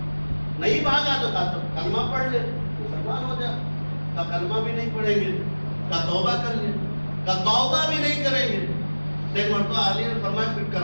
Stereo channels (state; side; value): inverted; both; correlation -1.00